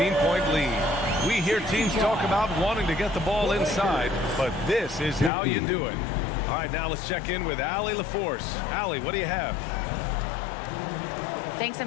lead. We hear teams talk about wanting to get the ball inside, but this is how you do it. All right, now let's check in with Allie LaForce. Allie, what do you have? Thanks.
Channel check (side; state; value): right; drops out; at 5.3 s